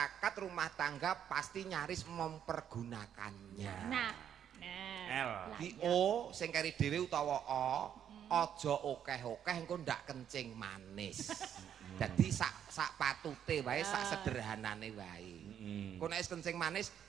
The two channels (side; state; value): left; quieter; 9.3 dB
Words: rumah tangga pasti nyaris mempergunakannya. Nah. L. Di O sing kari dhewe utawa O aja okeh-okeh engko ndak kencing manis. Jadi sak patute wae, sak sederhanane wae. Engko nek wis kencing manis